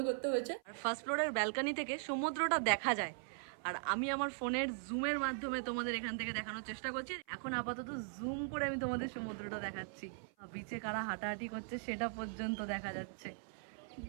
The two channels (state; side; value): silent; left; 51 dB below the other